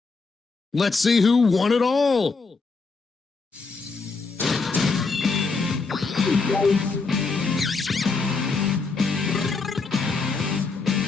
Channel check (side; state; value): right; quieter; 4.3 dB